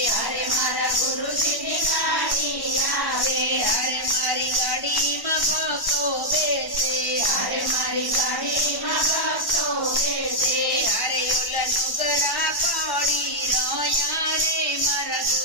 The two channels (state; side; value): late; right; 1.1 ms